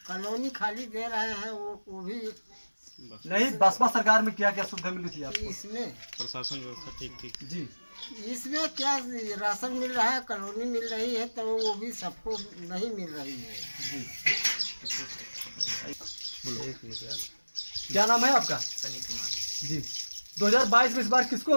कॉलोनी खाली दे रहे हैं, वो भी नहीं, बसपा सरकार में क्या क्या सुविधा मिल रही थी आपको? इसमें प्रशासन व्यवस्था ठीक जी इसमें क्या राशन मिल रहा है, कॉलोनी मिल रही है, तो वो भी सबको नहीं मिल रही है। जी, क्या नाम है आपका? सनी कुमार। जी, 2022 में इस बार किसको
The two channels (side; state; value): both; inverted; correlation -1.00